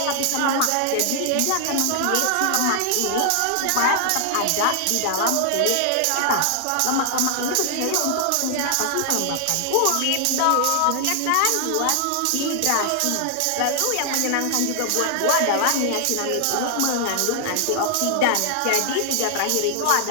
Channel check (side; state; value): both; different; correlation -0.01